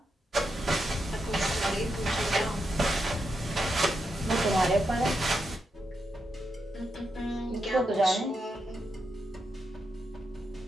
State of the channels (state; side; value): normal; both; correlation 0.85